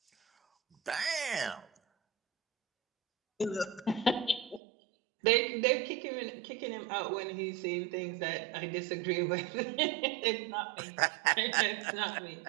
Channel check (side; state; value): left; drops out; at 4.6 s